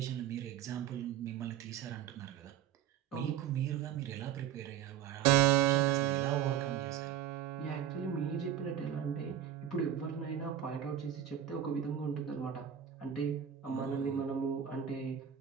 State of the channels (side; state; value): left; quieter; 9.7 dB